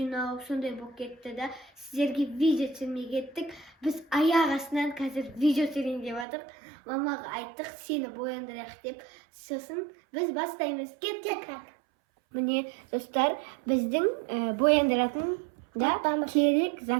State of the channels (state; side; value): drops out; left; at 6.2 s